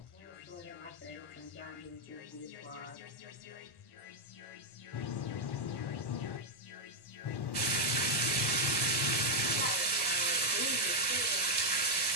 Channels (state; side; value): late; right; 1.1 ms